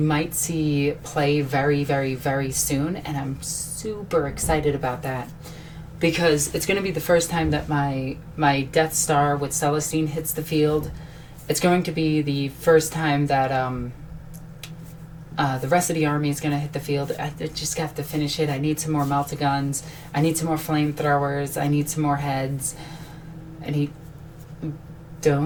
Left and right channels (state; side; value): identical; both; correlation 1.00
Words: might see play very, very, very soon, and I'm super excited about that because it's going to be the first time that my Death Star with Celestine hits the field. It's going to be the first time that the rest of the army is going to hit the field. I just have to finish it. I need some more melta-guns. I need some more flamethrowers. I need some more heads. I need...